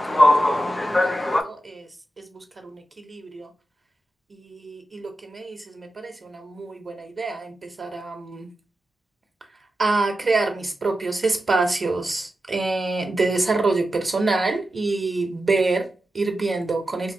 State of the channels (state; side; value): normal; both; correlation 0.91